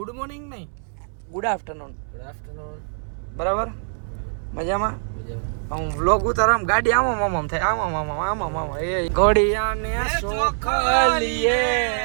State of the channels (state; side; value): silent; left; 63 dB below the other